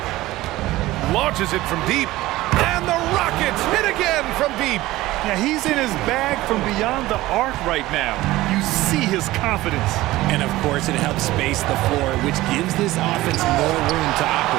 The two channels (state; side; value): quieter; left; 17.5 dB